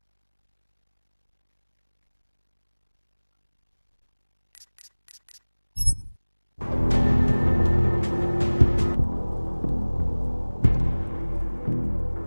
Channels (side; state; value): both; inverted; correlation -1.00